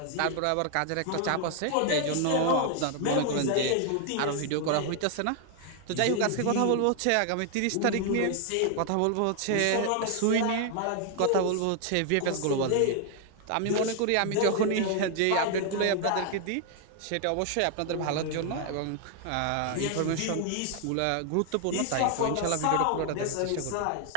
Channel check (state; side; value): different; both; correlation 0.00